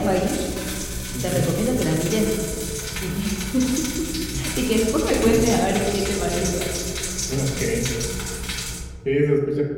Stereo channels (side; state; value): both; identical; correlation 1.00